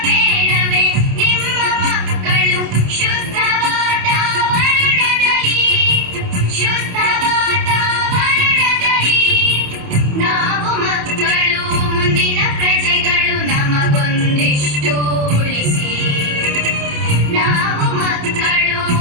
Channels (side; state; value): left; late; 28 ms